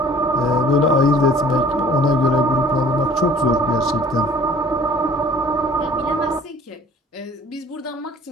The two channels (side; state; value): both; normal; correlation 0.51